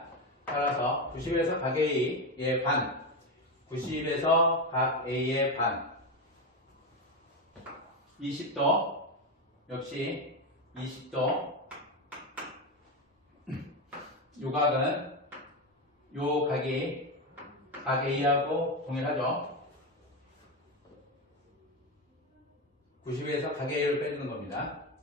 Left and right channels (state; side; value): normal; both; correlation 0.13